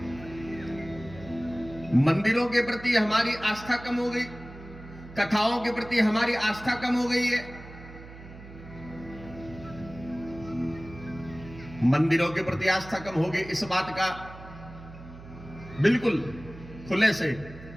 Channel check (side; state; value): right; noise; hum, 16 dB below the sound